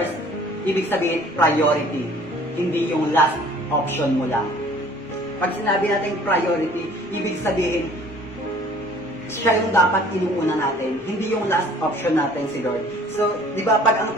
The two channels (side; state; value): left; noise; rumble, 28 dB below the sound